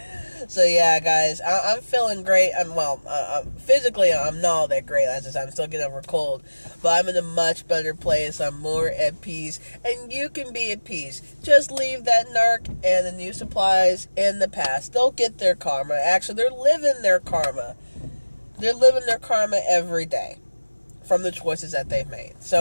So, yeah, guys, I'm feeling great. Physically, I'm not all that great. As I said, I'm still getting over a cold. But I'm in a much better place. I'm more at peace. And you can be at peace. Just leave that narc and the New Supplies in the past. They'll get their karma. Actually, they're living their karma. They're living their karma every day from the choices that they've made.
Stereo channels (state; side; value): inverted; both; correlation -1.00